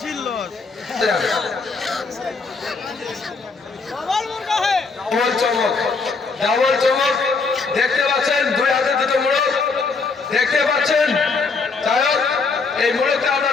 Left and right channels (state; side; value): quieter; right; 4.4 dB